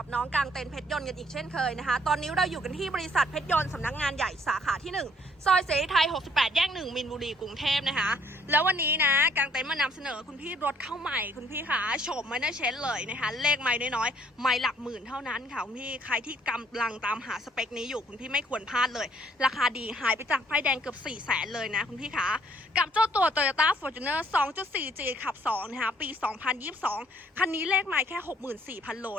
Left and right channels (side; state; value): both; normal; correlation 0.63